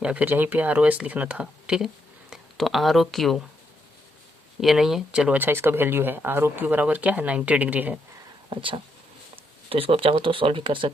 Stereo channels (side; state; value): both; normal; correlation 0.78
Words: या फिर यहीं पे आर ओ एस लिखना था, ठीक है। तो आर ओ क्यू ये नहीं है, चलो अच्छा इसका वैल्यू है आर ओ क्यू बराबर क्या है? 90 डिग्री है। अच्छा, तो इसको आप चाहो तो सॉल्व भी कर